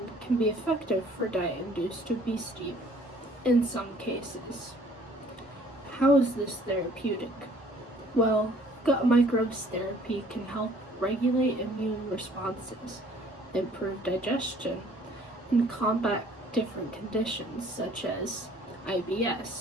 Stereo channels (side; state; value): both; normal; correlation 0.57